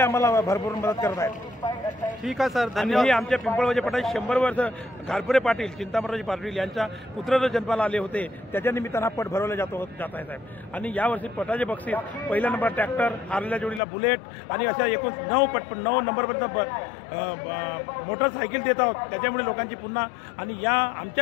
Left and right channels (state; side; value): drops out; right; at 13.8 s